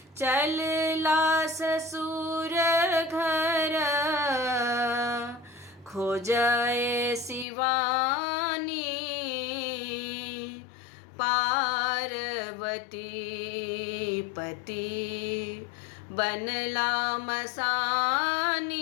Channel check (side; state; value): right; drops out; at 7.5 s